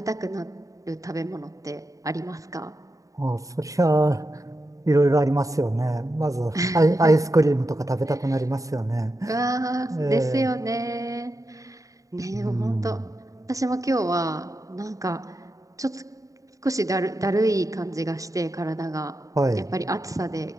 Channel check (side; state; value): left; late; 0.16 ms